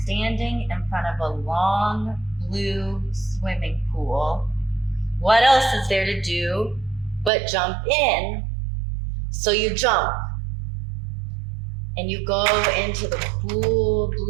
standing in front of a long blue swimming pool. What else is there to do but jump in? So you jump and you go into the cool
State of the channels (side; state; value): left; drops out; at 7.3 s